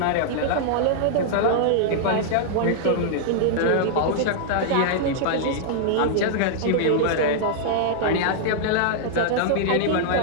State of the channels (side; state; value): both; different; correlation -0.01